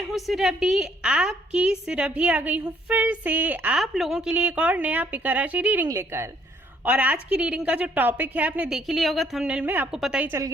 हूँ सुरभि, आपकी सुरभि आ गई हूँ फिर से आप लोगों के लिए एक और नया पिका राशि रीडिंग लेकर। और आज की रीडिंग का जो टॉपिक है आपने देख ही लिया होगा थंबनेल में, आपको पता ही चल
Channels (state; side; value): normal; both; correlation 0.65